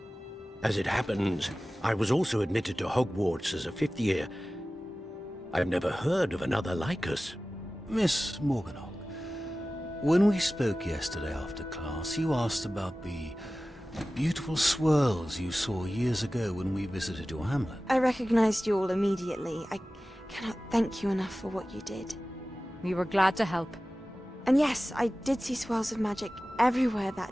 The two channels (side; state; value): both; normal; correlation 0.96